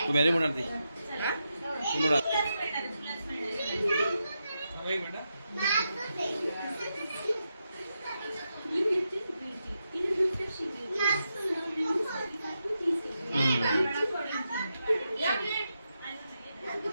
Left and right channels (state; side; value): inverted; both; correlation -0.86